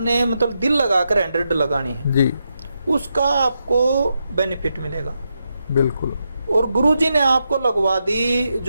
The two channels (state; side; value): inverted; both; correlation -0.85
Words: मतलब दिल लगाकर 100 लगानी है, जी। उसका आपको बेनिफिट मिलेगा। बिल्कुल। और गुरुजी ने आपको लगवा दी,